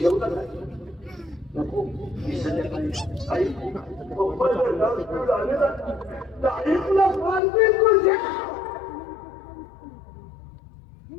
नाही नको मी संध्याकाळी आई पप्पा जर जाऊन स्कूल आले ना तर आई तुला मारते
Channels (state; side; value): drops out; right; at 7.4 s